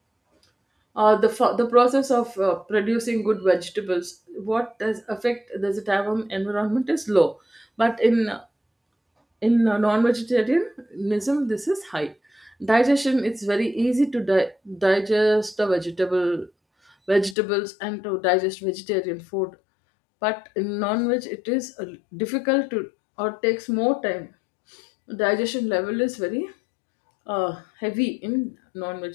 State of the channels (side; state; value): right; drops out; at 17.4 s